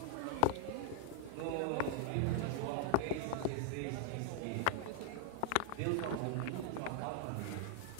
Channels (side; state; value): both; different; correlation 0.00